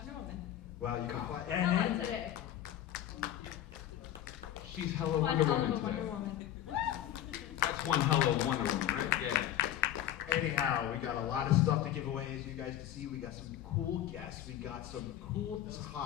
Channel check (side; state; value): right; quieter; 12.0 dB